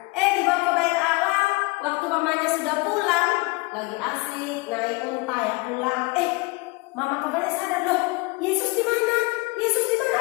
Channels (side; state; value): right; quieter; 26.1 dB